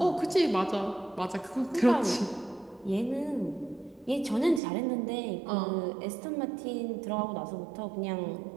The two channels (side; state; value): left; drops out; at 4.6 s